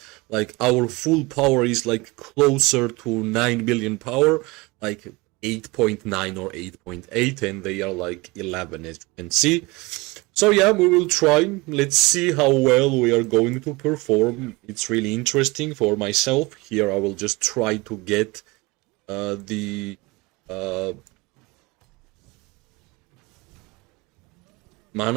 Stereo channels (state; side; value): quieter; left; 23.6 dB